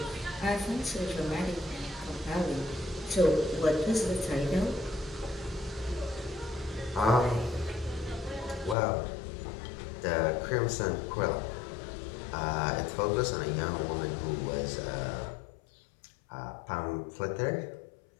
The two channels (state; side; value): drops out; right; at 8.8 s